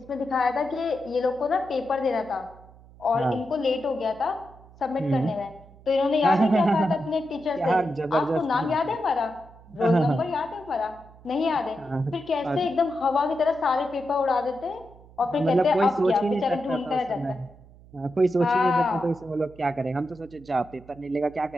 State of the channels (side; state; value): right; noise; hum, 23 dB below the sound